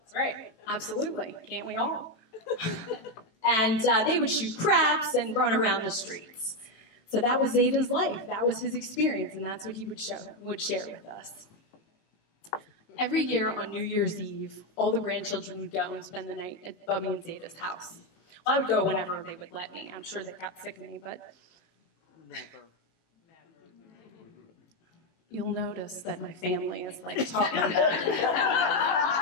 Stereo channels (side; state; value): right; late; 18 ms